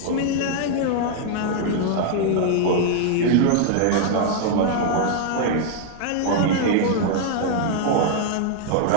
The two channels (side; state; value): both; different; correlation -0.01